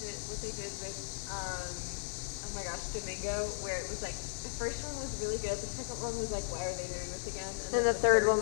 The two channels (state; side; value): silent; right; digital silence